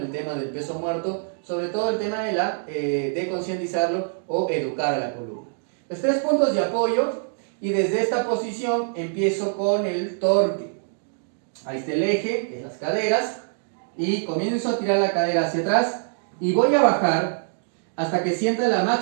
tema del peso muerto, sobre todo el tema de concientizarlo o educar a la columna. Los 3 puntos de apoyo, y desde esta posición empiezo con el torque. Ahí está el eje, que es las caderas, y comienzo a tirar la cadera hacia atrás y voy a bajar hasta que sienta la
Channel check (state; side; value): silent; left; digital silence